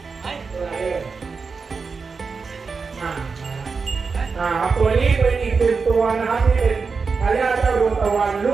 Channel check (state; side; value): quieter; left; 4.9 dB